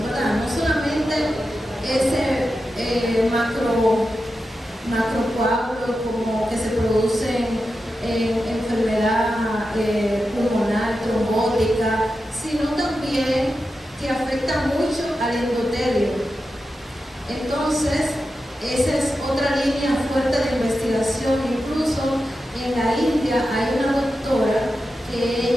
¿verdad? No solamente ese macrocoágulos como que se producen en enfermedad pulmonar, trombótica, sino también que afecta mucho al endotelio. Entonces, esa es otra línea fuerte de investigación. Incluso en la India hay una doctora que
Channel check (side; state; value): both; normal; correlation 0.90